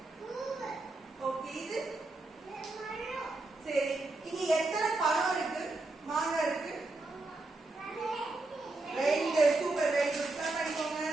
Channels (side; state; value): left; quieter; 3.1 dB